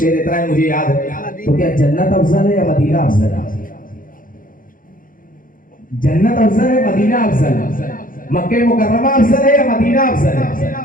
اتنا ہے مجھے یاد ہے. تو کیا جنت افضل ہے یا مدینہ افضل ہے؟ جنت افضل ہے مدینہ افضل ہے؟ مکہ مکرمہ افضل ہے یا مدینہ افضل ہے؟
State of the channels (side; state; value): right; late; 0.40 ms